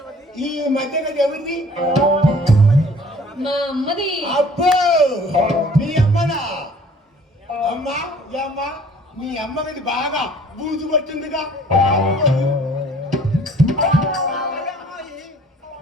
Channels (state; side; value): normal; both; correlation 0.53